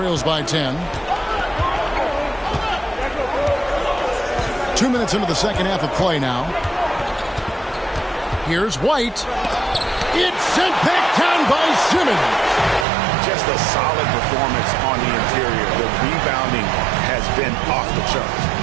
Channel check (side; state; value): left; drops out; at 12.9 s